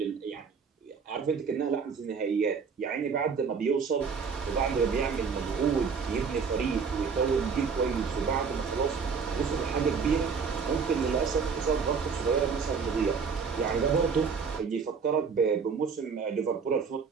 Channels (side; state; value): left; quieter; 5.7 dB